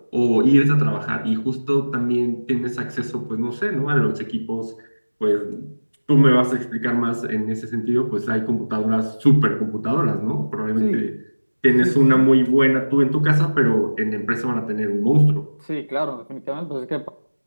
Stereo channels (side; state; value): both; inverted; correlation -1.00